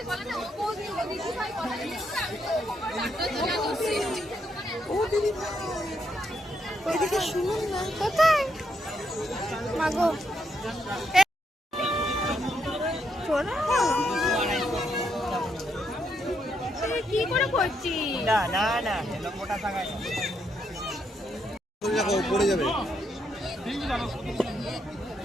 ওইদিকে শুনুন না, কোথায় মাগো কি করে করছিস? দেখো পড়ে যাবে।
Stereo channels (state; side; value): normal; both; correlation 0.78